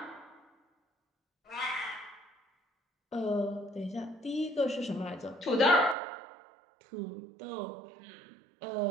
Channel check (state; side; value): drops out; left; at 6.0 s